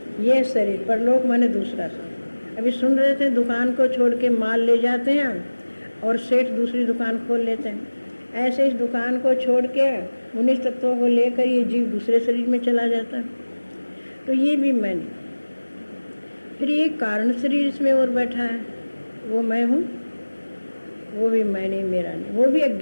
ये शरीर, परलोक माने दूसरा शरीर। अभी सुन रहे थे, दुकान को छोड़ के माल ले जाते हैं और सेठ दूसरी दुकान खोल लेते हैं। ऐसे इस दुकान को छोड़ के 19 तत्वों को लेकर ये जीव दूसरे शरीर में चला जाता है। तो ये भी मैं नहीं। फिर ये कारण शरीर इसमें और बैठा है, वो मैं हूँ, वो भी मैं नहीं, मेरा नहीं। वो भी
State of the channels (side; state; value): both; inverted; correlation -1.00